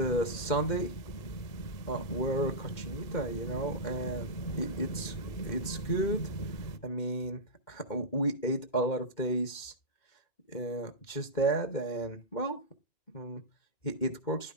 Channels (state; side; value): late; right; 2.1 ms